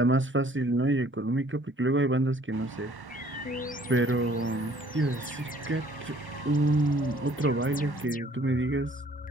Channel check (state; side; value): normal; both; correlation 0.58